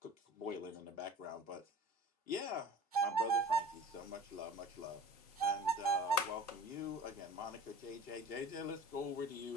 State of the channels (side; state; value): both; normal; correlation 0.42